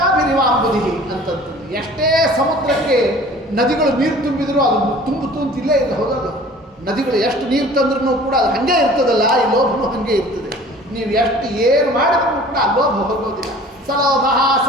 ಅಂತಂತಂದು, ಎಷ್ಟೇ ಸಮುದ್ರಕ್ಕೆ ನದಿಗಳು ನೀರು ತುಂಬಿದ್ರು ಅದು ತುಂಬಿಲ್ಲೇ ಇಲ್ಲ, ಹೌದಲ್ಲ? ನದಿಗಳು ಎಷ್ಟು ನೀರು ತಂದ್ರೂ ಕೂಡ ಅದು ಹಾಗೆ ಇರ್ತದಲ್ಲ, ಈ ಲೋಭನೂ ಹಾಗೆ ಇರ್ತದೆ. ನೀವು ಎಷ್ಟು ಏನು ಮಾಡಿದ್ರೂ ಕೂಡ ಆ ಲೋಭ ಹೋಗೋದಿಲ್ಲ. ಸಲೋಭ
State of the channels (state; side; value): normal; both; correlation 0.47